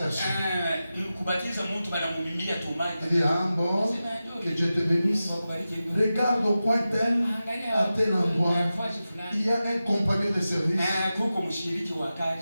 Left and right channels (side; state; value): both; inverted; correlation -0.93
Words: Il dit, ah bon, que Dieu te bénisse. Regarde au coin tel, à tel endroit, il y a un compagnon de service.